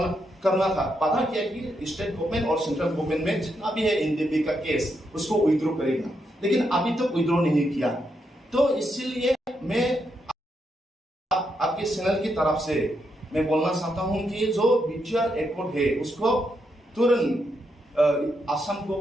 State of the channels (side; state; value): both; normal; correlation 0.81